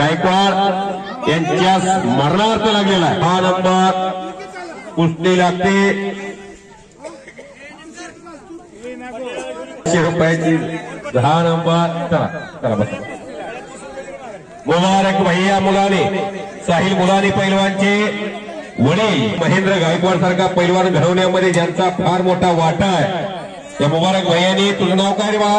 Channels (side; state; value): both; identical; correlation 1.00